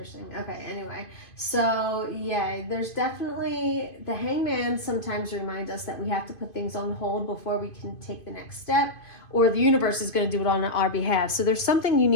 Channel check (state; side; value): late; right; 2.5 ms